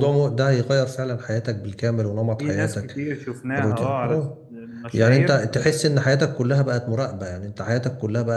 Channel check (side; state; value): both; identical; correlation 1.00